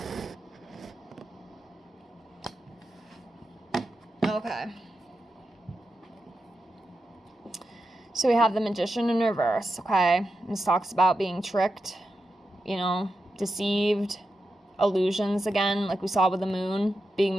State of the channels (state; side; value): normal; both; correlation 0.89